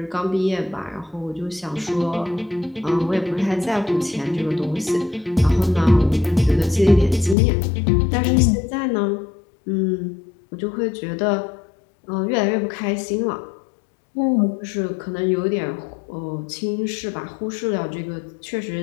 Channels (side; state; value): right; drops out; at 7.4 s